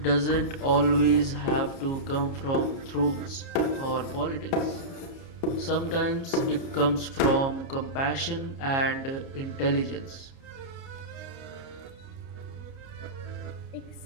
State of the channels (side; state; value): right; late; 30 ms